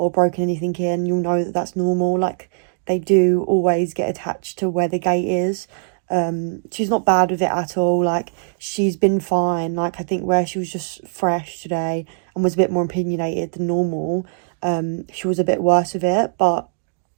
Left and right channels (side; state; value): left; silent; digital silence